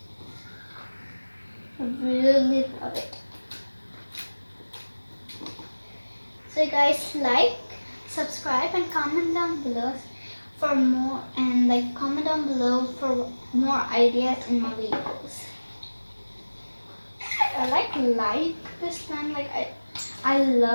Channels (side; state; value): both; inverted; correlation -1.00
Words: I really love it. So guys, like, subscribe, and comment down below for more, and like comment down below for more ideas in my videos. I like this slime, like I